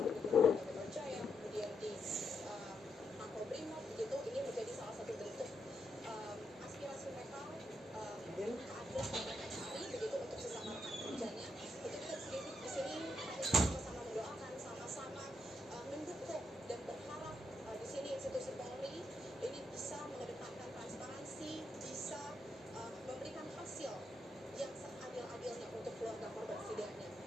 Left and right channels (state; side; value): normal; both; correlation 0.80